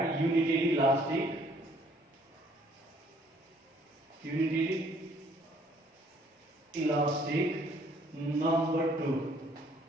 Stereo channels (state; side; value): normal; both; correlation 0.62